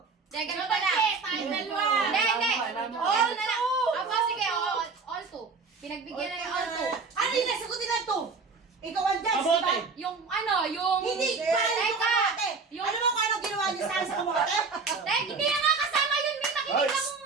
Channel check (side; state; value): left; quieter; 4.6 dB